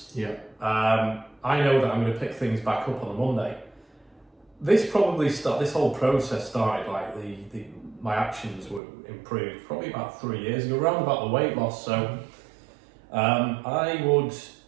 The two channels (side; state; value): left; drops out; at 8.8 s